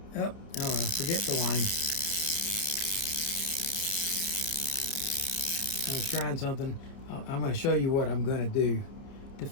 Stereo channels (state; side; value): late; right; 30 ms